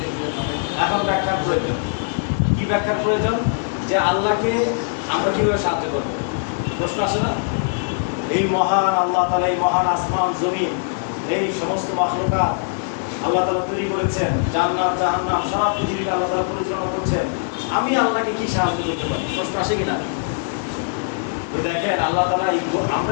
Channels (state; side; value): silent; right; 64 dB below the other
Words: এখন ব্যাখ্যার প্রয়োজন। কি ব্যাখ্যার প্রয়োজন? যে আল্লাহকে আমরা কিভাবে সাহায্য করবো? প্রশ্ন আসে না? এই মহান আল্লাহ তাআলা, এই মহান আসমান জমিন, এই সমস্ত মাখলুকাত আল্লাহ তাআলা তৈরি করেছেন, জান্নাত জাহান্নাম সারা পৃথিবীকে আল্লাহ তাআলা পরিচালনা করছেন। আমি আল্লাহকে কি সাহায্য করতে পারি? প্রশ্ন আসে কিনা? দেখেন, আল্লাহ তাআলা